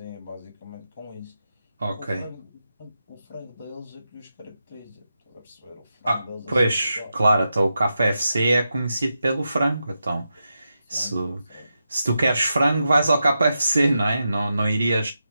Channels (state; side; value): inverted; both; correlation -0.88